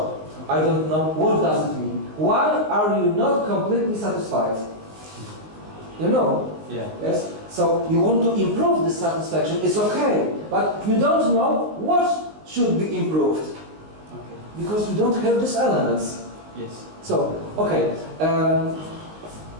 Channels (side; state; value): left; late; 19 ms